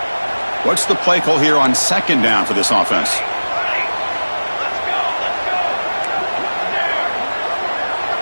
What's the play call here on 2nd down for this offense?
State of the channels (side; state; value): both; inverted; correlation -1.00